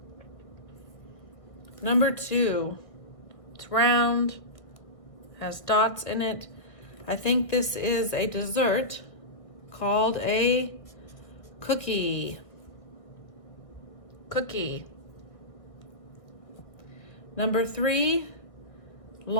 Number 2. It's round, has dots in it. I think this is a dessert called a cookie. Cookie. Number 3,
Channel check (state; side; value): late; right; 1.6 ms